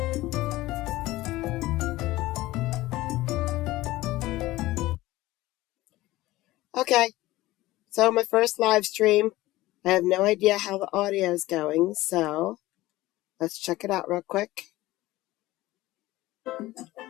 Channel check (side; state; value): right; quieter; 17.8 dB